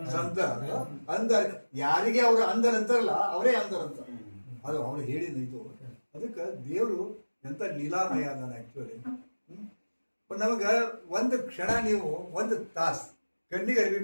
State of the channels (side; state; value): both; inverted; correlation -1.00